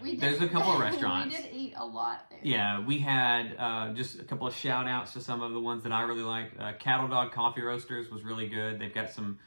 There's a couple of restaurants. We did eat a lot there. Yeah, we had just a couple of shout outs to some of the ones that I really like. Cattle Dog Coffee Roasters was really good. They've got some,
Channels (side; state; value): both; inverted; correlation -1.00